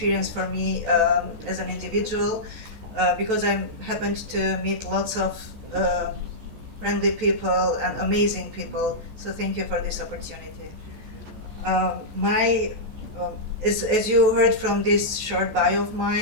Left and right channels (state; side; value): late; left; 14 ms